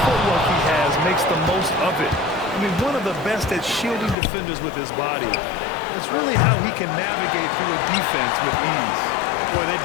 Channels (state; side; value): drops out; right; at 4.2 s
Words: footwork he has makes the most of it. I mean, one of the best at shielding defenders with his body. It's really how he can navigate through a defense with ease. Boy, they